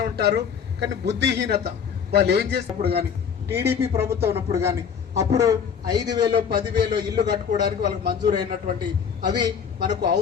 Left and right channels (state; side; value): quieter; right; 7.2 dB